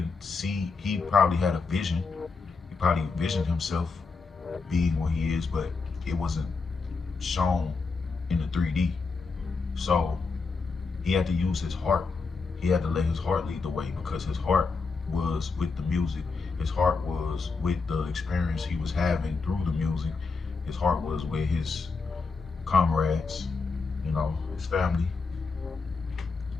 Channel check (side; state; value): right; quieter; 4.4 dB